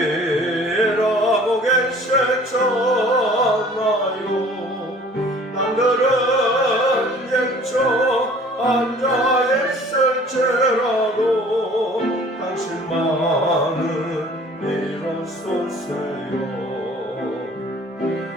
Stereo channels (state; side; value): normal; both; correlation 0.50